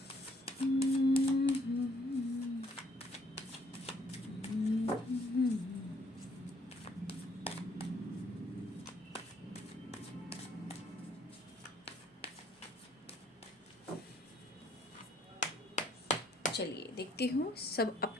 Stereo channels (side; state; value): both; normal; correlation 0.64